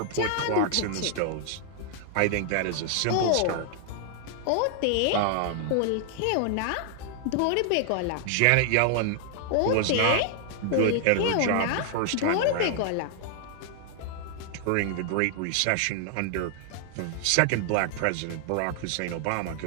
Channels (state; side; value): different; both; correlation 0.00